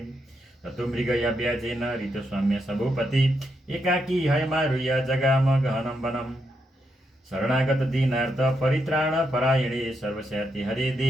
ततो मृगया व्याजेन ऋतुस्वाम्य सभूपति एकाकी हयमारुह्य जगाम गहनं वनम् शरणागत दीनार्थ परित्राण परायणे सर्वस्याति हरे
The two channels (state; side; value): normal; both; correlation 0.81